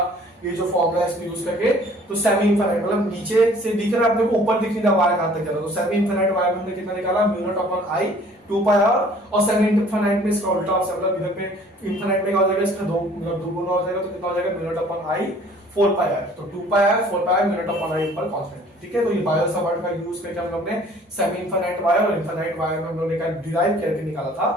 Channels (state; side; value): normal; both; correlation 0.54